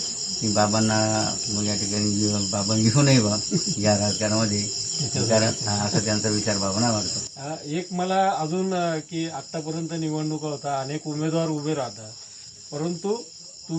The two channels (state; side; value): identical; both; correlation 1.00